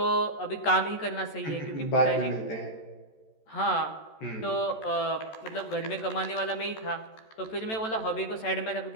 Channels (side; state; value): right; late; 14 ms